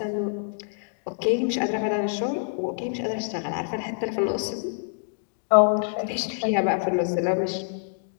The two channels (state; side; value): silent; right; digital silence